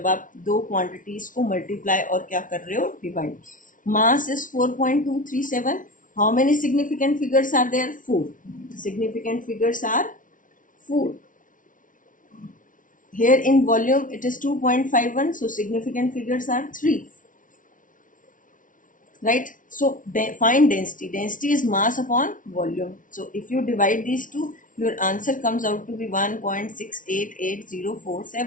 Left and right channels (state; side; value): late; right; 0.38 ms